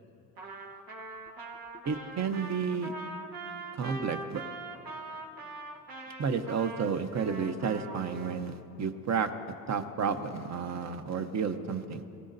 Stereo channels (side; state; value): left; quieter; 5.4 dB